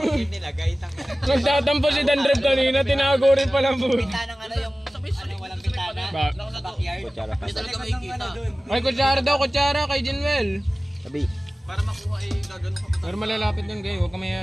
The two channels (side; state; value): both; normal; correlation 0.97